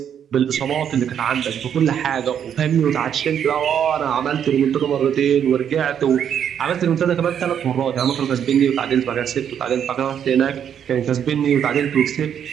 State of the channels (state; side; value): quieter; left; 8.8 dB